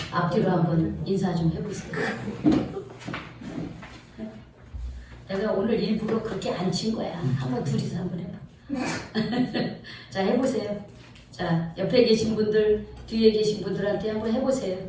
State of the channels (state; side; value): identical; both; correlation 1.00